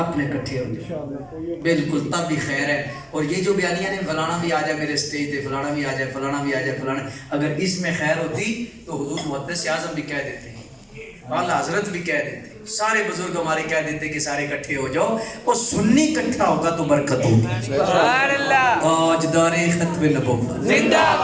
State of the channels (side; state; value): both; identical; correlation 1.00